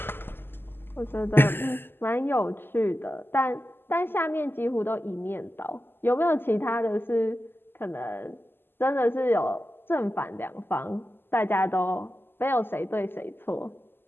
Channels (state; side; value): late; right; 0.10 ms